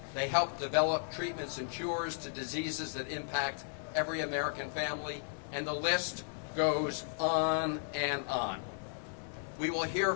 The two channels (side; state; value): right; silent; digital silence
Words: They help develop treatments and cures to diseases that impact every American family, and the list goes on and on. We will hear